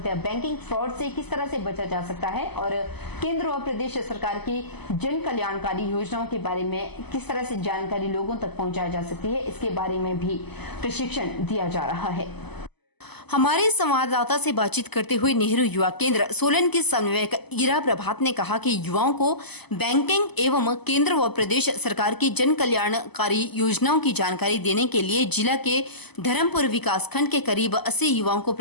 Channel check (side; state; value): right; late; 0.99 ms